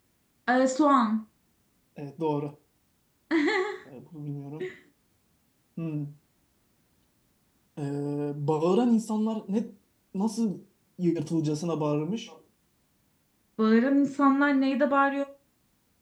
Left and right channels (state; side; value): identical; both; correlation 1.00